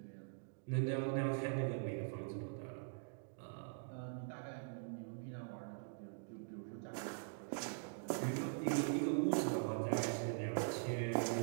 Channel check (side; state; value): left; silent; digital silence